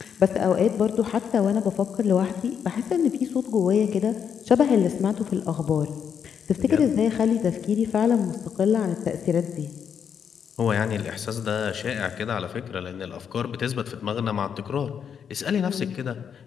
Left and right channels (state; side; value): quieter; right; 7.6 dB